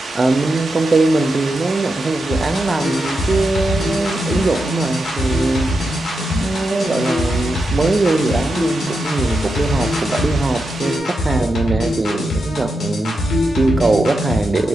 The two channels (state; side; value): normal; both; correlation 0.87